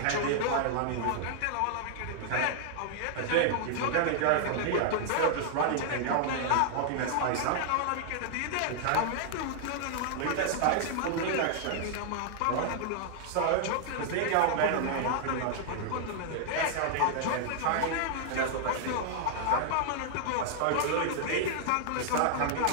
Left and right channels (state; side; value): different; both; correlation -0.01